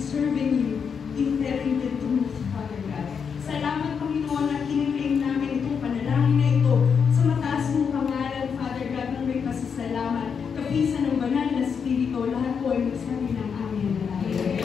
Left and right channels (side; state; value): right; quieter; 6.5 dB